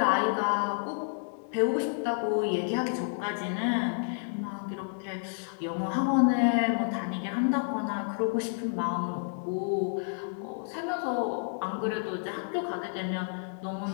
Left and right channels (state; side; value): silent; right; 58 dB below the other